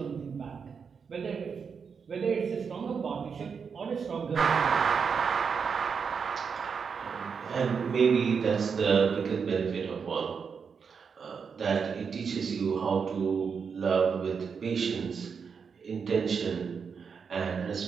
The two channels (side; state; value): left; quieter; 6.1 dB